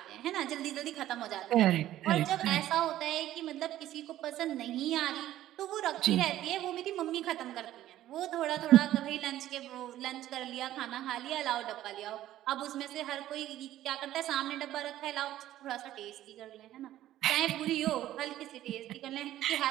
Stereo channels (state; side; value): quieter; left; 13.5 dB